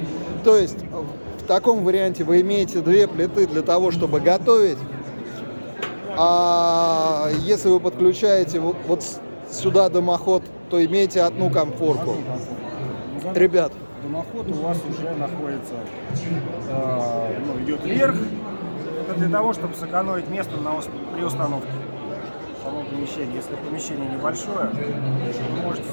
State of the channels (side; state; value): both; inverted; correlation -1.00